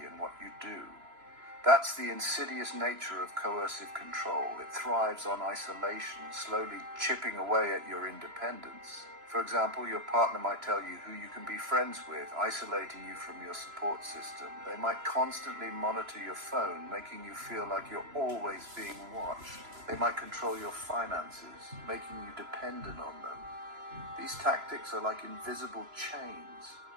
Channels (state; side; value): late; left; 3.0 ms